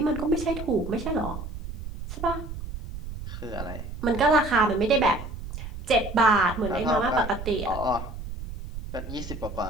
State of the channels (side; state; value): right; noise; rumble, 9 dB below the sound